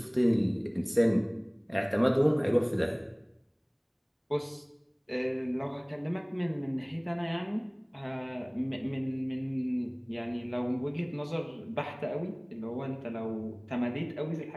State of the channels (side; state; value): both; identical; correlation 1.00